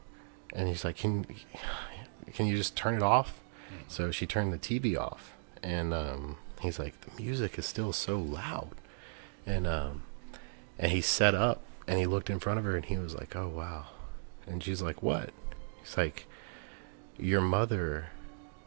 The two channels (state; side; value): silent; left; digital silence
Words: And he's like, can you just turn it off? Mm-hmm. So she turned the TV off. And he's like, the music is still so loud. And he sat up, and he looked in front of her, and he was like, oh, wow. And she's like, what? He's like, your mother